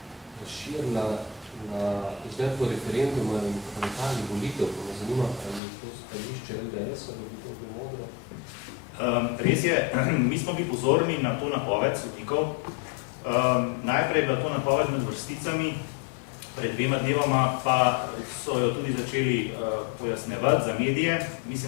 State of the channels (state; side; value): drops out; right; at 5.6 s